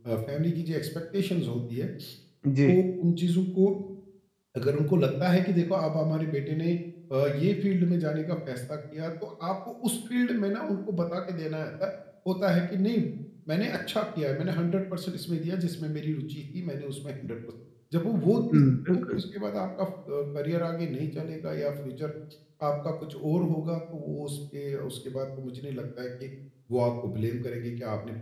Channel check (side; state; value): both; identical; correlation 1.00